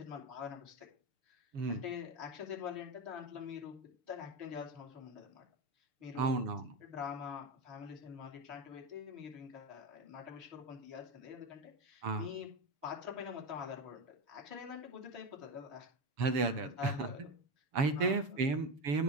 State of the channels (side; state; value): left; late; 7.1 ms